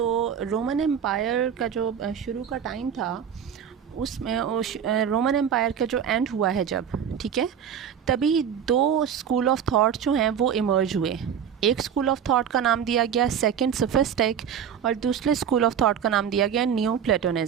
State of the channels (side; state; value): left; quieter; 8.3 dB